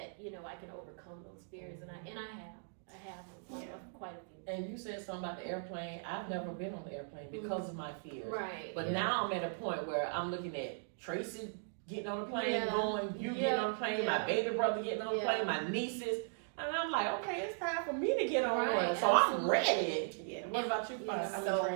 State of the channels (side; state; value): left; silent; digital silence